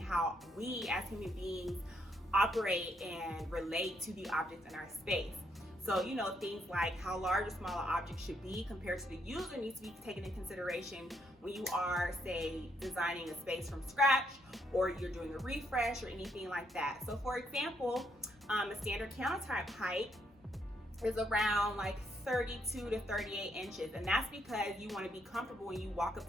we as human beings operate and relate to the objects in our space. So, things like how large or small an object should be compared to the user needs to be taken into consideration when you are, say, designing a space from scratch, or you're doing a refresh or anything like that. So for example, a standard countertop height is around like 32 to 38 inches. And that's because you want to be comfortable when you walk up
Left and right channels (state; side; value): normal; both; correlation 0.74